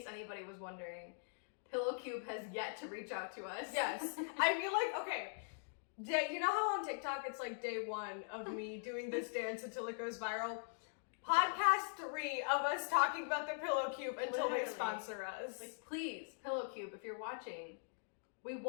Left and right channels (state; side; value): silent; right; digital silence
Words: anybody was wondering, Pillow Cube has yet to reach out to us. Yes. I feel like, okay, you know how on TikTok it's like day 1 of me doing this dance until it goes viral? Podcast 3 of us talking about the Pillow Cube until they sponsor us. Like, please, Pillow Cube, if you're watching, we